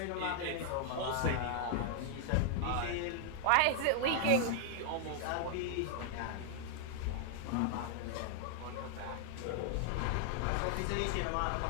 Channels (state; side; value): different; both; correlation 0.00